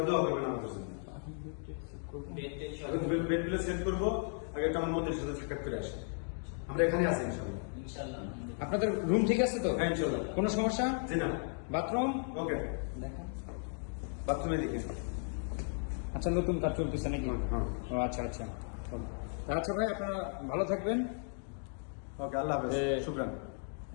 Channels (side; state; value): right; silent; 54 dB below the other